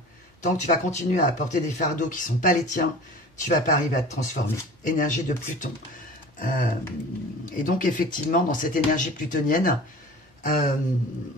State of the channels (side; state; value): both; normal; correlation 0.40